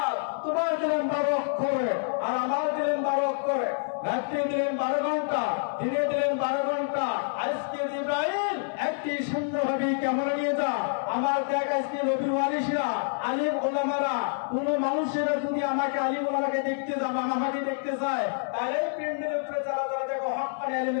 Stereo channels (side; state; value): right; silent; 60 dB below the other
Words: তোমার দিলেন 12 অক্ষরে আর আমার দিলেন 12 অক্ষরে, রাত্রি দিলেন 12 ঘন্টা, দিনে দিলেন 12 ঘন্টা। আজকে জিবরাইল একটি সুন্দরভাবে ক্যামেরা নিয়ে যা, আমার দেখ আজকে নবী ওয়ারিসরা আলিম ওলামারা কোন মানুষেরা যদি আমাকে আলিম ওলামাকে দেখতে যাবে, আমাকে দেখতে চায়, তাহলে এই প্যান্ডেলের উপরে যারা যারা দেখো হক্কানি